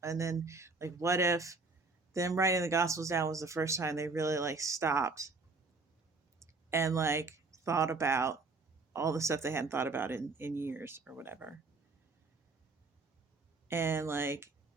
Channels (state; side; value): quieter; left; 3.8 dB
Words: And then, like, what if them writing the gospels down was the first time they really, like, stopped and, like, thought about all the stuff they hadn't thought about in years or whatever. And, like,